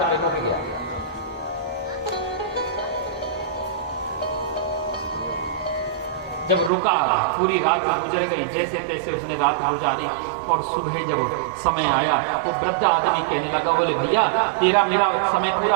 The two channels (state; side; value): drops out; left; at 6.7 s